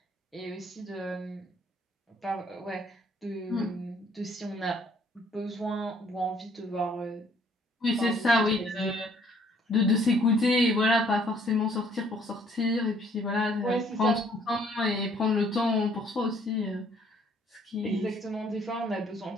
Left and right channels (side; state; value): both; normal; correlation 0.62